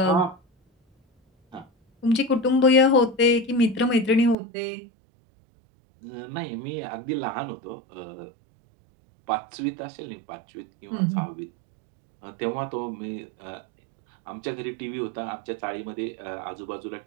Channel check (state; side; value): drops out; left; at 4.4 s